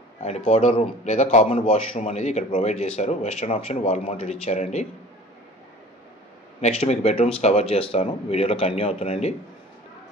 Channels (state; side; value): normal; both; correlation 0.45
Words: and powder room లేదా కామన్ వాష్రూమ్ అనేది ఇక్కడ ప్రొవైడ్ చేశారు. వెస్టర్న్ ఆప్షన్ వాల్ మౌంటెడ్ ఇచ్చారండి. నెక్స్ట్ మీకు బెడ్రూమ్స్ కవర్ చేస్తాను, వీడియోలో కంటిన్యూ అవుతుందండి.